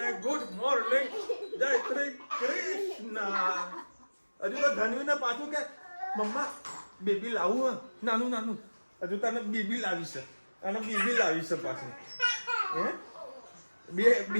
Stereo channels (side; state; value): both; inverted; correlation -1.00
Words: ગુડ મોર્નિંગ, જય શ્રી કૃષ્ણ. હજુ તો ધનવીને પાછું કે મમ્મા બેબી લાવું નાનું નાનું. હજુ તને બેબી લાવી છે, અને બેબી લાવી છે પાછું. હે બે